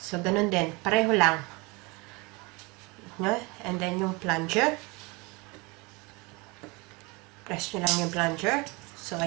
ganun din. Pareho lang. And then, yung plunger. Press nyo lang yung plunger. So,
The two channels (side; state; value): left; quieter; 26.7 dB